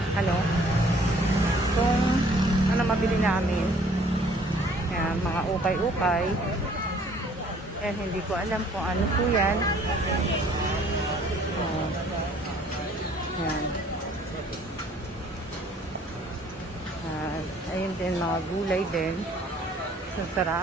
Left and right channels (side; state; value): both; normal; correlation 0.57